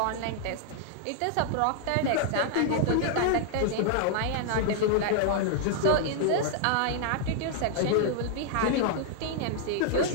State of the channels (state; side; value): different; both; correlation -0.01